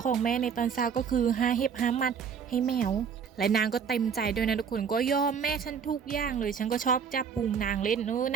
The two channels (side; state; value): left; quieter; 6.8 dB